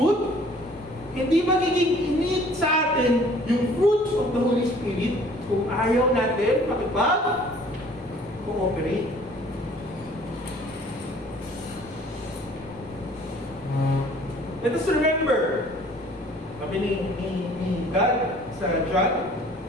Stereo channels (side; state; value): both; normal; correlation 0.54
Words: hindi magiging init sa atin yung fruits of the Holy Spirit kung ayaw natin makipag-cooperate. Let us remember, sabi ni God sa John,